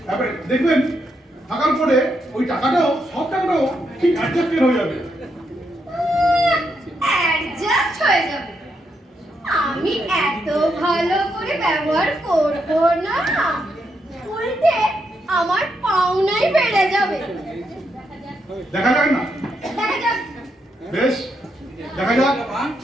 এবারে দেখবেন থাকার পরে ওই টাকাটাও, সব টাকাটাও ঠিক অ্যাডজাস্টেড হয়ে যাবে। অ্যাডজাস্ট হয়ে যাবে? আমি এত ভালো করে ব্যবহার করব না, উল্টে আমার পাওনাই বেড়ে যাবে। দেখা যাক না? দেখা যাক। বেশ, দেখা যাক।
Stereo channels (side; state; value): both; normal; correlation 0.80